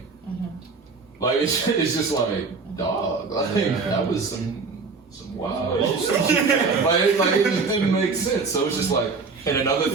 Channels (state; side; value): quieter; left; 4.5 dB